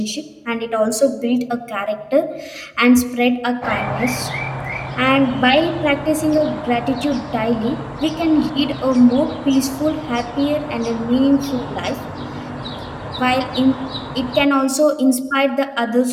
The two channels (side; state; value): both; identical; correlation 1.00